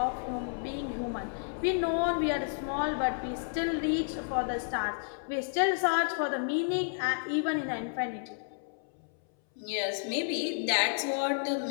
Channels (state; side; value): silent; right; 57 dB below the other